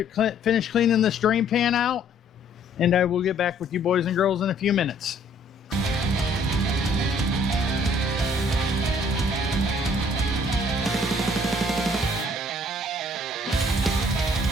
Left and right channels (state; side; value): normal; both; correlation 0.60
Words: finish cleaning this drain pan out, and I will get back with you boys and girls in a few minutes.